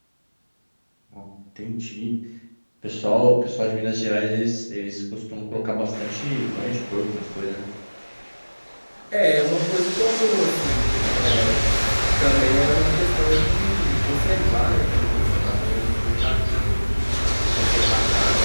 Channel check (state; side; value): inverted; both; correlation -1.00